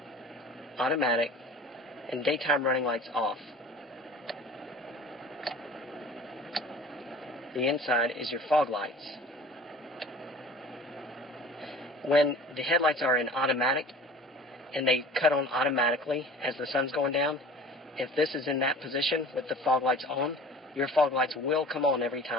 automatic, and daytime running lights off. The inside is your fog lights. When the headlights are in automatic and they cut on automatically as the sun's going down, if this is in that position with the fog lights on, your fog lights will come on every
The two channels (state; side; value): normal; both; correlation 0.42